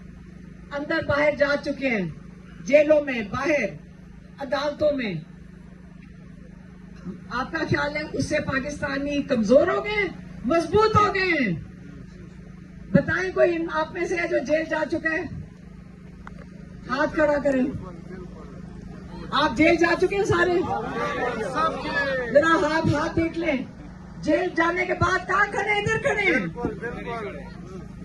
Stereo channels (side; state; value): both; identical; correlation 1.00